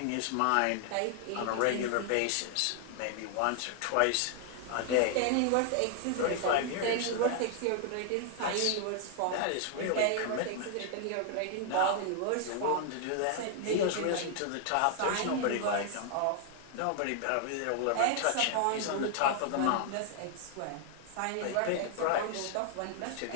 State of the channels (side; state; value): both; different; correlation 0.00